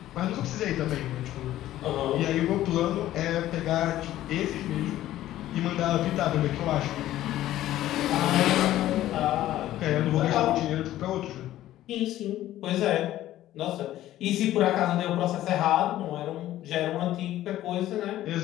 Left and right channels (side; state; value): right; quieter; 13.9 dB